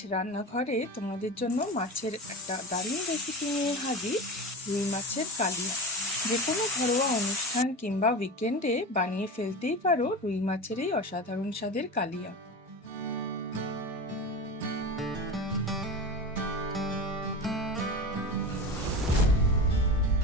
রান্নাঘরে তোমাদের জন্য মাছের একটা দারুণ রেসিপি নিয়ে হাজির, রুই মাছের কালিয়া। যে কোনো ঘরোয়া অনুষ্ঠান কিংবা উইকেন্ডে বানিয়ে ফেলতেই পারো রুই মাছের এই অসাধারণ স্বাদের কালিয়া।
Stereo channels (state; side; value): normal; both; correlation 0.27